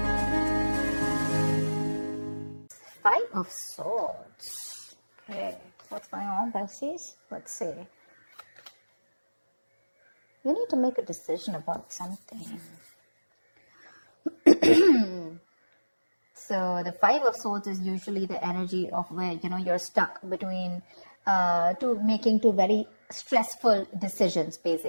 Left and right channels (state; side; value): inverted; both; correlation -1.00